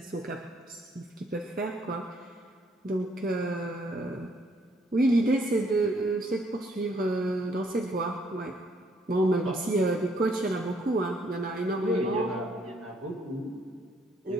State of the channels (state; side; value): normal; both; correlation 0.68